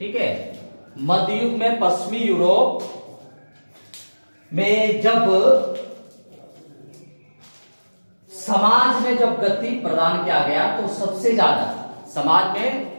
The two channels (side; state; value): both; inverted; correlation -1.00